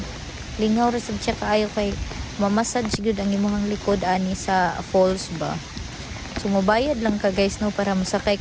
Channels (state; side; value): identical; both; correlation 1.00